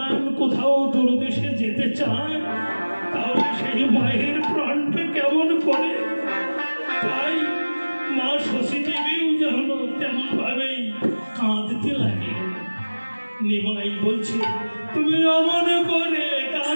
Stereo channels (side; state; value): both; inverted; correlation -1.00